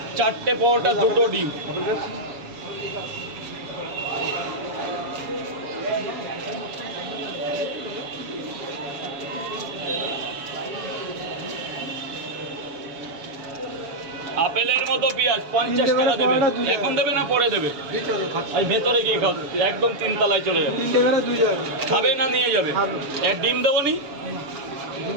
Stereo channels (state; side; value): late; left; 7.2 ms